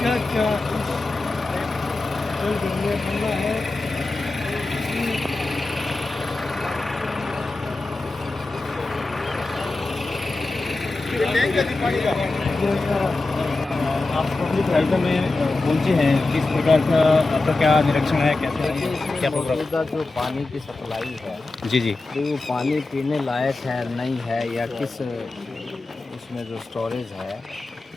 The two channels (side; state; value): right; quieter; 3.3 dB